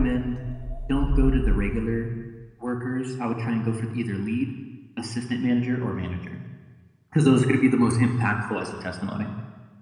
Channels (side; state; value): both; identical; correlation 1.00